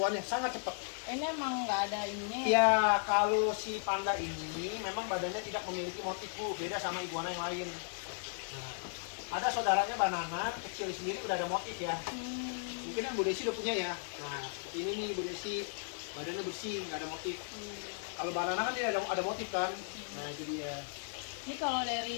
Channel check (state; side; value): silent; right; 54 dB below the other